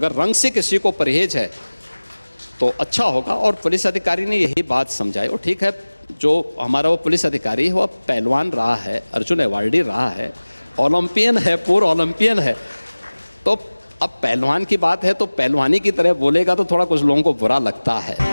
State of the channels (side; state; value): both; inverted; correlation -1.00